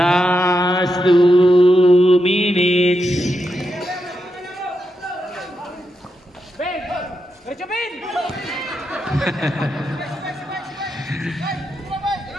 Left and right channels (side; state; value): both; normal; correlation 0.85